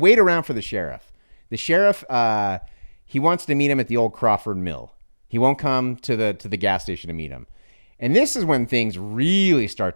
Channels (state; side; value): inverted; both; correlation -1.00